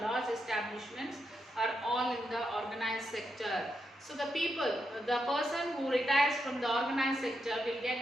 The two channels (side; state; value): both; normal; correlation 0.83